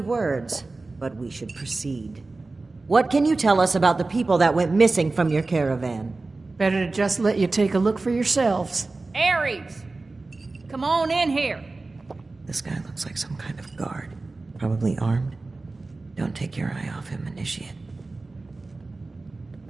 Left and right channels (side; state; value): left; quieter; 3.4 dB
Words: but we should proceed. What can you tell us about the people that went missing from your caravan? Better to just let you take a look for yourselves. Ares! Come on in here! This guy looks like some kind of guard. Probably armed. Don't take your eye off him, Initiate.